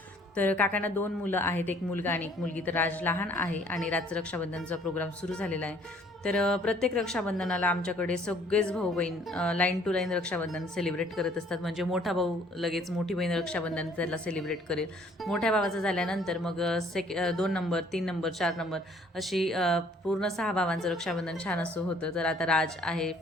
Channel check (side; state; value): both; normal; correlation 0.59